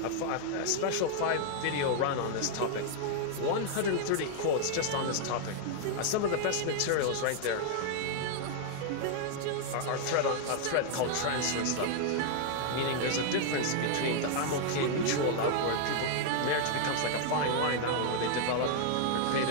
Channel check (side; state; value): both; different; correlation 0.00